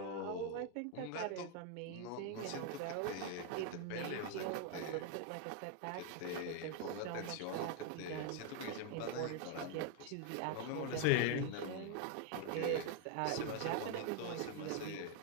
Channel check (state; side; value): different; both; correlation 0.01